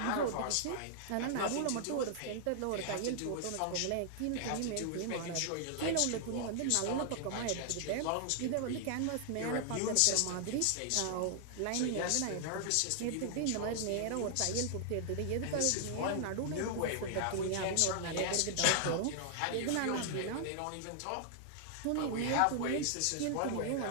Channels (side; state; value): both; different; correlation -0.01